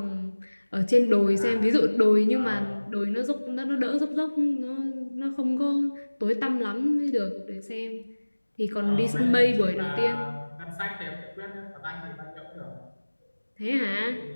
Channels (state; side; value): inverted; both; correlation -1.00